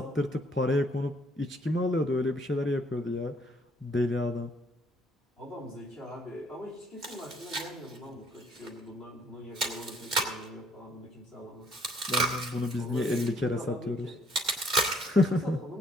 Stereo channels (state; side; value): normal; both; correlation 0.64